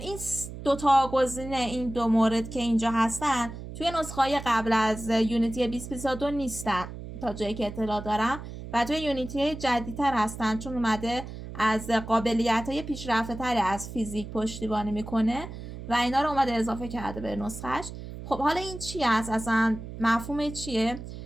دوتا گزینه، این دو مورد که اینجا هستن توی نسخه‌های قبل از یونیتی 2022 نیستن تا جایی که اطلاع دارم و توی یونیتی جدیدتر هستن، چون اومده از قابلیت‌های پیشرفته‌تری از فیزیک پشتیبانی میکنه و اینا رو اومده اضافه کرده به نسخهش. خب حالا این چی هست اصلا؟ مفهوم چیه؟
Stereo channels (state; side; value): noise; right; hum, 11 dB below the sound